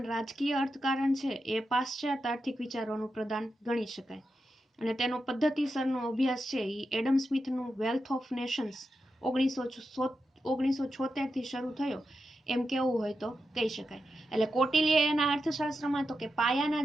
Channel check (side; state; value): both; normal; correlation 0.88